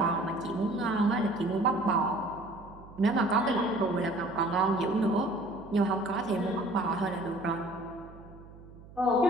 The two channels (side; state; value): right; noise; hum, 19 dB below the sound